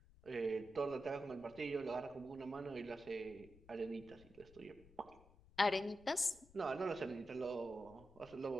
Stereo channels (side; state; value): left; noise; rumble, 23 dB below the sound